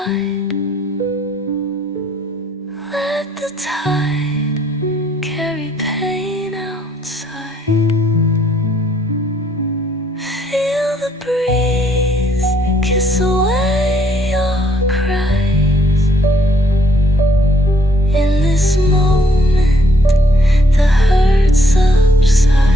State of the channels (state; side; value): normal; both; correlation 0.68